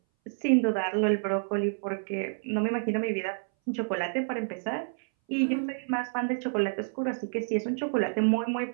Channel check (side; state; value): left; silent; 59 dB below the other